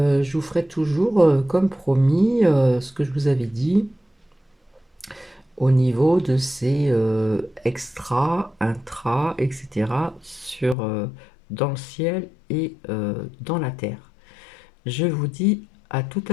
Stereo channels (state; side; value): drops out; right; at 10.8 s